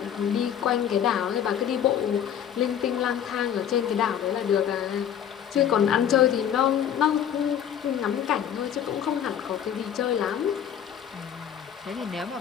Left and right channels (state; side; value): quieter; right; 9.3 dB